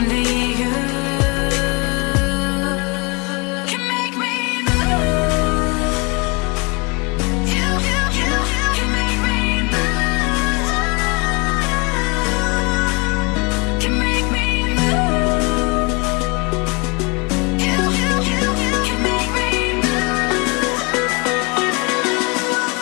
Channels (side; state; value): right; quieter; 29.7 dB